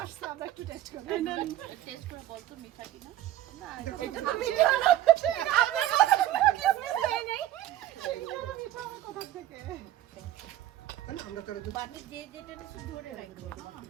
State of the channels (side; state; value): left; quieter; 13.5 dB